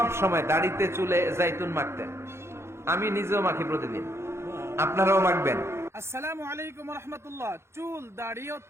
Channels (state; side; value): late; left; 0.13 ms